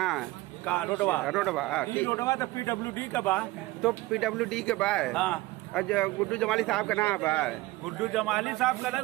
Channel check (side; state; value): left; quieter; 19.3 dB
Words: का रोडवा ठीक। रोडवा तो PWD का बा। तो PWD के बा। हाँ। अच्छा गुड्डू जमाली साहब का नाम बा? गुड्डू जमाली साहब का ना